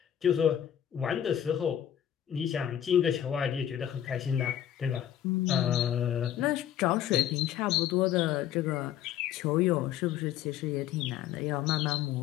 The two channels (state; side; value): quieter; right; 10.5 dB